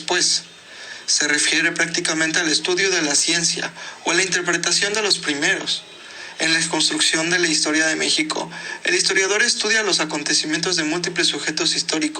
Se refiere prácticamente al estudio de la ciencia o a la interpretación de los primeros. En la construcción de la historia de México, el historiador estudia los acontecimientos de múltiples sujetos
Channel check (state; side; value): identical; both; correlation 1.00